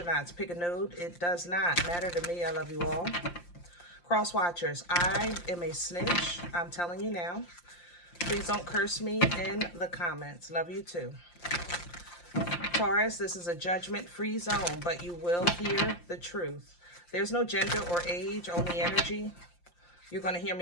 Pick a node. It does not matter to me. I love you all. Cross watchers, I am a snitch. I'm telling you now. Please don't curse me in the comments. Love you too. Taurus, this is a judgment-free zone, but you will hear the truth. There's no gender or age, only energy. You're going to hear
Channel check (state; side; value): late; right; 5.7 ms